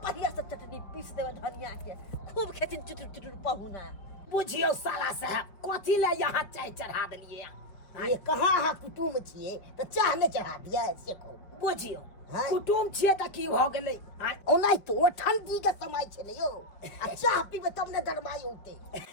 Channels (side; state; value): right; late; 4.9 ms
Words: बढ़िया से चटनी पीस देबै धनिया के खूब खेथिन चुटुर पहुना। बुझियो साला साहब कथी ले यहाँ चाय चढ़ा देलिए? ये कहाँ अहाँ कुटुम छियै त चाह नहीं चढ़ा दिया से को? बुझियो कुटुम छिए त की भ गेलै? ओनाइ तो ठंडी के समय छै ने यो, आ चाह पीबे तब ने गरमाई होते।